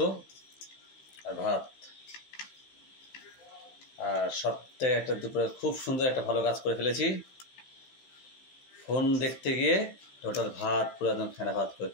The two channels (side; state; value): right; late; 15 ms